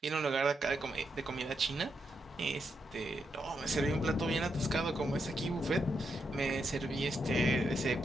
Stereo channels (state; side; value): normal; both; correlation 0.82